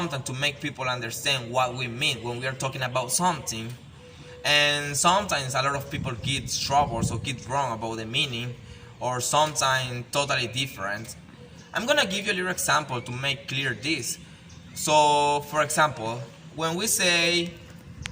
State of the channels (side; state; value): both; identical; correlation 1.00